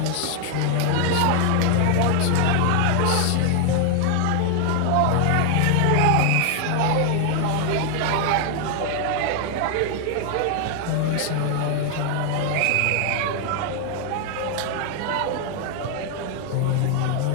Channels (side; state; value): both; different; correlation 0.00